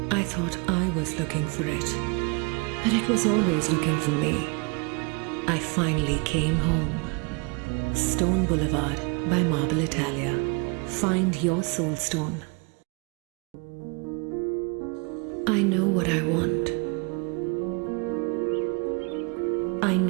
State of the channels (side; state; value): left; quieter; 31.5 dB